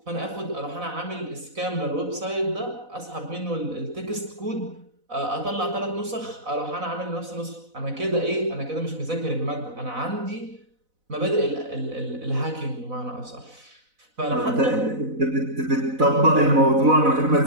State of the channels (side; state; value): left; late; 4.0 ms